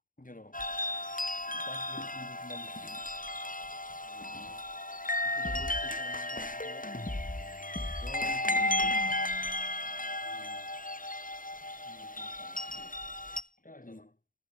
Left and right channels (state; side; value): late; right; 0.39 ms